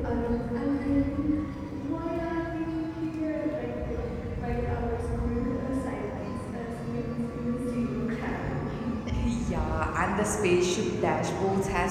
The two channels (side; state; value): both; identical; correlation 1.00